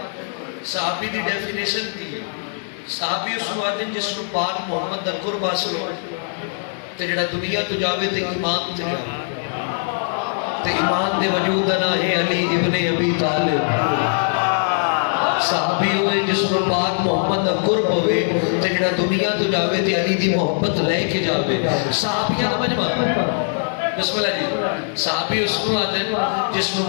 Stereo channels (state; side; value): silent; right; digital silence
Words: सहाबी दी डेफिनेशन दी सहाबी उसनु आदे जिसनु पाक मोहम्मद दा कुर्ब हासिल हो ते जेड़ा दुनिया तो जावे ते ईमान ते जावे ते ईमान दे वजूद दा ना है अली इब्ने अबी तालिब सहाबी होए जिसको पाक मोहम्मद दा कुर्ब होवे ते जेड़ा दुनिया तो जावे ते अली दी मोहब्बत लेके जावे सहाबियां दा मजमा बिस्मिल्लाह जी सहाबी उसको आते जिसको